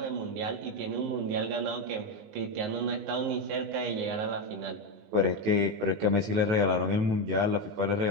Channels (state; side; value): late; left; 19 ms